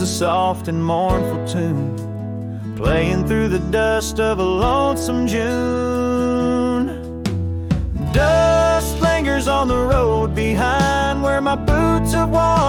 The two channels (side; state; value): both; identical; correlation 1.00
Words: a soft and mournful tune, playing through the dust of a lonesome June. Dust lingers on the road behind, where my boots have